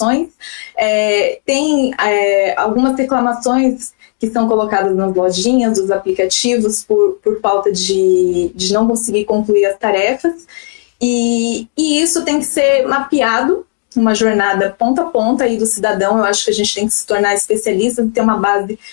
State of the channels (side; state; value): right; silent; 56 dB below the other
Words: Tem algumas reclamações que são colocadas nas lojinhas, dos aplicativos, por falta de não conseguir concluir as tarefas. E isso tem que ser mapeado, uma jornada ponta a ponta aí do cidadão. Eu acho que a gente tem que se tornar especialista e ter uma base